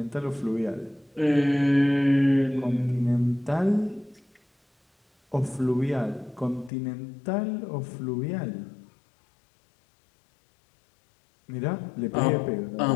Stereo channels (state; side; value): drops out; right; at 6.7 s